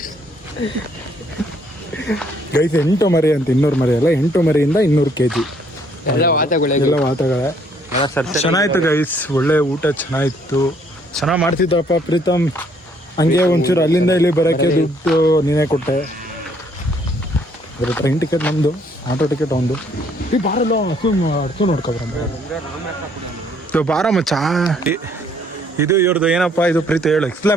ಗೈಸ್ 8 ಮರಿ ಅಂತ, 200 ಮರಿ ಅಲ್ಲ, 8 ಮರಿಯಿಂದ 200 kg ಎಲ್ಲ ವಾತಗಳೇ. ಚೆನ್ನಾಗಿತ್ತು ಗೈಸ್. ಒಳ್ಳೆ ಊಟ ಚೆನ್ನಾಗಿತ್ತು. ಚೆನ್ನಾಗಿ ಮಾಡ್ತಿದ್ದಪ್ಪ ಪ್ರೀತಮ್. ಹಂಗೆ ಒಂಚೂರು ಅಲ್ಲಿಂದ ಇಲ್ಲಿ ಬರೋಕ್ಕೆ ದುಡ್ಡು ನೀನೇ ಕೊಟ್ಟೆ. ಟ್ರೈನ್ ಟಿಕೆಟ್ ನಮ್ಮದು, ಆಟೋ ಟಿಕೆಟ್ ಒಂದು. ಈ ಬಾರಲ್ಲ ಅರ್ಥ ನೋಡ್ಕೊಬರ ಬಾರ ಮಚ್ಚ. ಇದು ಇವ್ರದ್ದು ಏನಪ್ಪ ಇದು ಪ್ರೀತಿ ಹೇಳು,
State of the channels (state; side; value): normal; both; correlation 0.65